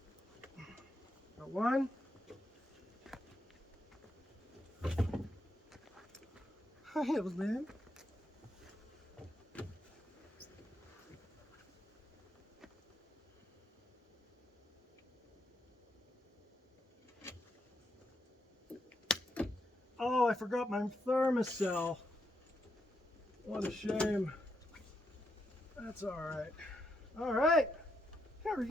Got one. Hi, Evalyn. Oh, I forgot my thermocell. What a shame. That's all right. All right. There we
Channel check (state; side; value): normal; both; correlation 0.81